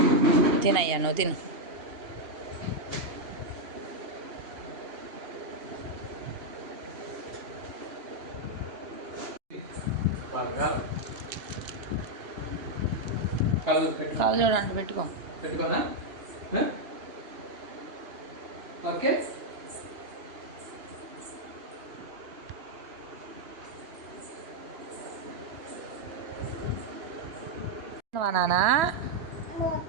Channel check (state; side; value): late; left; 2.8 ms